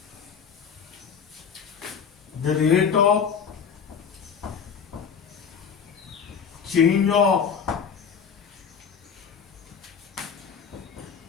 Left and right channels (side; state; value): right; quieter; 6.8 dB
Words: the rate of change of